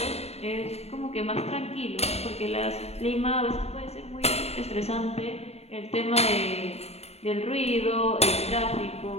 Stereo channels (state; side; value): late; right; 0.30 ms